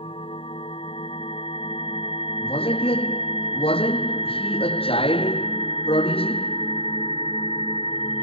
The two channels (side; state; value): right; late; 0.27 ms